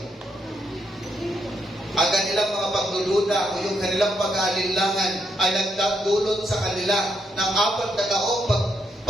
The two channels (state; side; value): normal; both; correlation 0.77